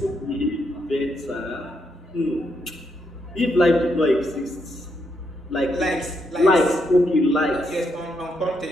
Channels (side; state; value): both; normal; correlation 0.79